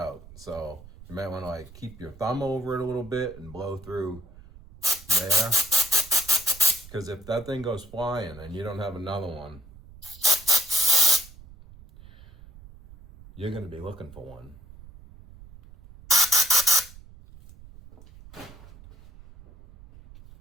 So you might want to like keep your thumb over it a little bit and blow through there. Because if that thing goes flying and you don't have another one, you're going to be looking for one.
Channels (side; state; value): right; noise; rumble, 20 dB below the sound